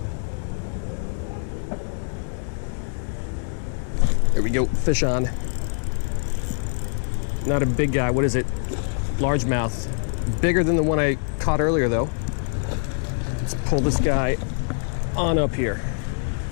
There we go, fish on. Not a big guy, what is it? Largemouth. Bigger than the one I caught earlier though. Let's pull this guy on up here.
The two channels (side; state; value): right; silent; 62 dB below the other